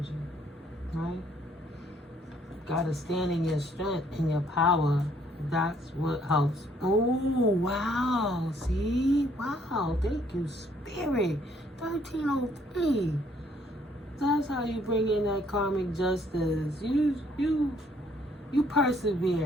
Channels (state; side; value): normal; both; correlation 0.65